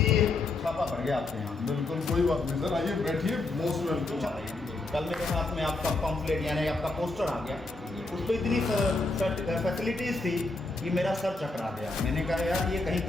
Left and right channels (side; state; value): right; quieter; 3.2 dB